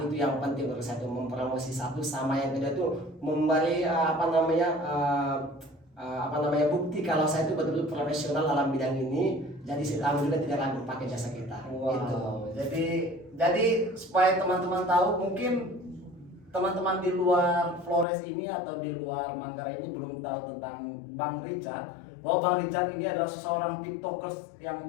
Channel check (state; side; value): drops out; right; at 18.1 s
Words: itu yang penting menurut saya, itu mempromosi satu, sama yang kedua itu memberi bukti kalau saya itu betul-betul profesional dalam bidang ini. Jadi si tamu juga tidak ragu pakai jasa kita. Wow. Gitu. Jadi supaya teman-teman tahu, mungkin teman-teman di luar Flores ini atau di luar Manggarai ini belum tahu tentang Bang Richard. Bahwa Bang Richard ini adalah seseorang TikTokers yang